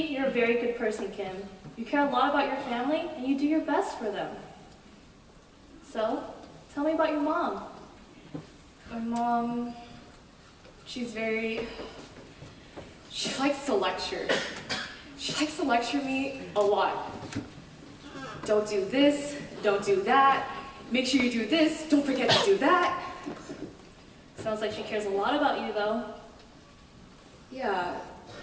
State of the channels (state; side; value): identical; both; correlation 1.00